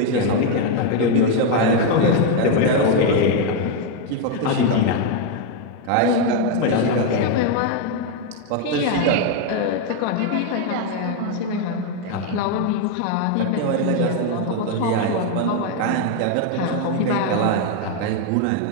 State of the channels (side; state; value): both; different; correlation 0.01